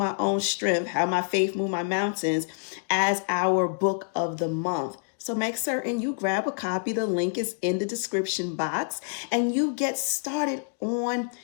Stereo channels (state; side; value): silent; right; digital silence